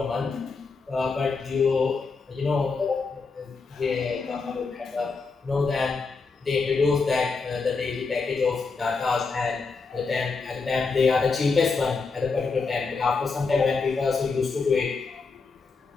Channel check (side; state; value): right; quieter; 4.5 dB